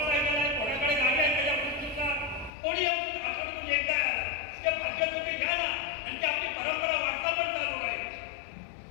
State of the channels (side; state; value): right; drops out; at 2.5 s